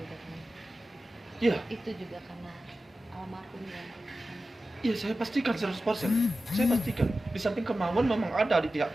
kan. Iya, Itu juga karena almarhumnya. iya saya pastikan 100%. Saya pastikan. Di samping kemauan memang ada di pihak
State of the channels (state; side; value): normal; both; correlation 0.94